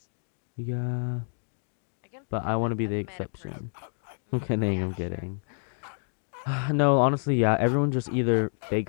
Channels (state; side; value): silent; right; 59 dB below the other